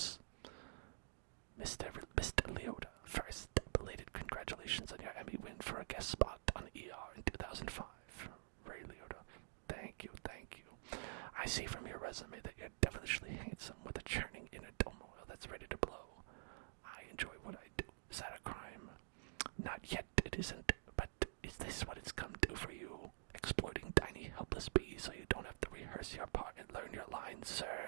Mr. Leota, first, belated congratulations on your Emmy win for a guest spot on ER in 2005. Ray Leota, thank you. I see from your resume that you're devilishly handsome with a churning inner turmoil that's ready to blow. I enjoy what I do. Is that a crime? Not yet, it isn't, but is this what it's come to for you? Exploiting tiny, helpless bees so you don't have to rehearse your part and learn your lines,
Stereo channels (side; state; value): left; silent; digital silence